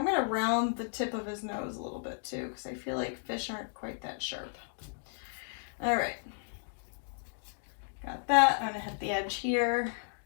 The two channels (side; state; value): right; silent; digital silence